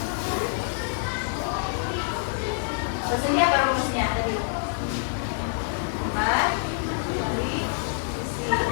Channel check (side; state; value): right; silent; digital silence